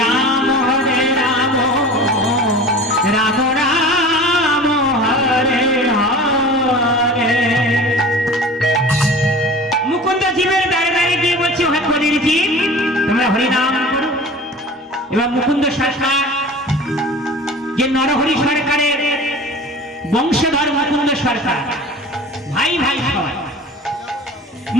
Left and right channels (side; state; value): both; normal; correlation 0.40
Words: রাম রাম রাম হরে হরে। মুকুন্দ জীবের দাঁড়ে দাঁড়িয়ে গিয়ে বলছে হে হরির জীব তোমরা হরিনাম করো। এবার মুকুন্দ সরকার যে নরহরি সরকারের বংশধর মুকুন্দ সরকার ভাই ভাই সবাই